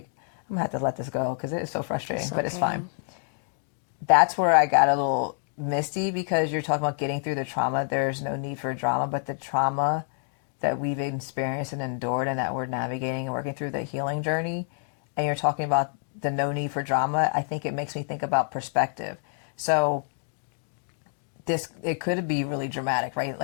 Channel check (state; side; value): silent; right; 60 dB below the other